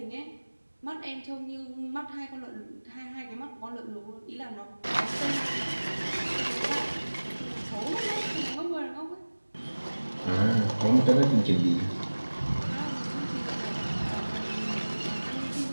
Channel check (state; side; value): inverted; both; correlation -1.00